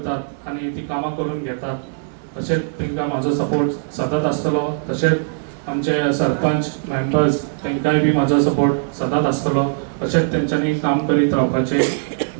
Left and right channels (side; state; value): left; silent; digital silence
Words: आनी ती कामां करून घेतात तशेंच तांकां म्हाजो सपोर्ट सदांच आसतलो तशेंच आमचे सरपंच मेंबर्स तांकांय बी म्हाजो सपोर्ट सदांच आसतलो तशेंच तेंच्यांनी काम करीत